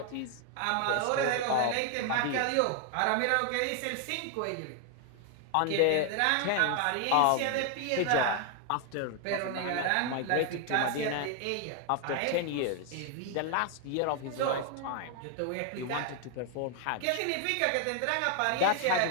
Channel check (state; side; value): different; both; correlation 0.00